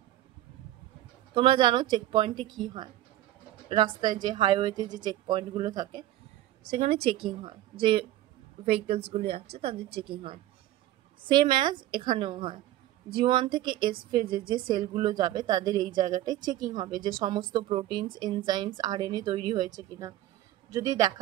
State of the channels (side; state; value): left; quieter; 14.2 dB